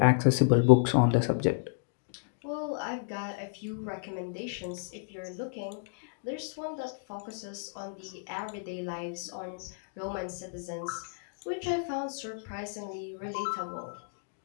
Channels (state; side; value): silent; right; digital silence